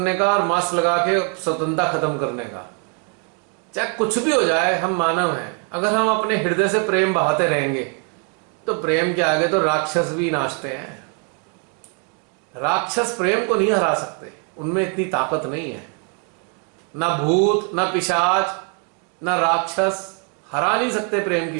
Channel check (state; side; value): quieter; left; 35.4 dB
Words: का और मास्क लगा के स्वतंत्रता खत्म करने का। चाहे कुछ भी हो जाए, हम मानव हैं, अगर हम अपने हृदय से प्रेम बहाते रहेंगे तो प्रेम के आगे तो राक्षस भी नाचते हैं। राक्षस प्रेम को नहीं हरा सकते, उनमें इतनी ताकत नहीं है। ना भूत, ना पिशाच, ना राक्षस हरा नहीं सकते प्रेम